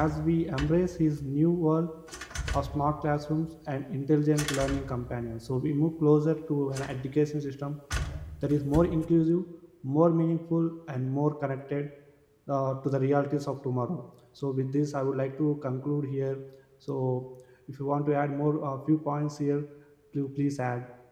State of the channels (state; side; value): identical; both; correlation 1.00